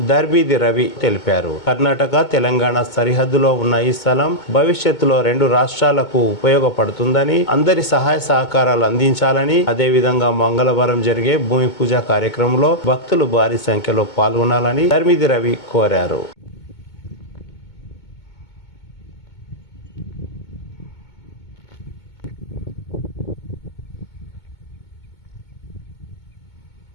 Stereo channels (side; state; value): right; late; 2.2 ms